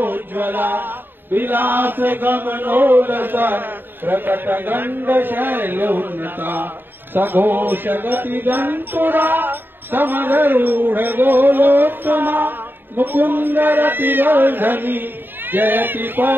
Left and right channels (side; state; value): left; late; 0.096 ms